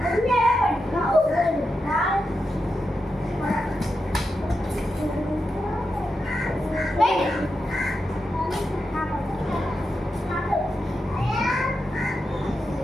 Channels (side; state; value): both; normal; correlation 0.87